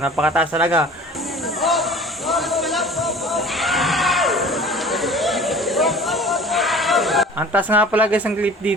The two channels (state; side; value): normal; both; correlation 0.44